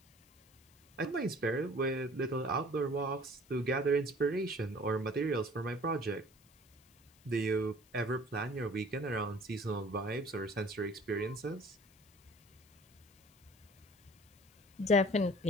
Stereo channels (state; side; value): noise; left; hiss, 30 dB below the sound